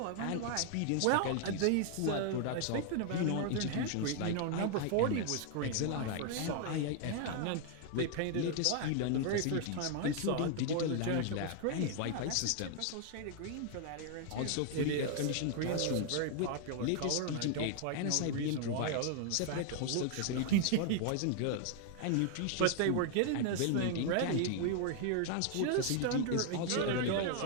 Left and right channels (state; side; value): different; both; correlation 0.00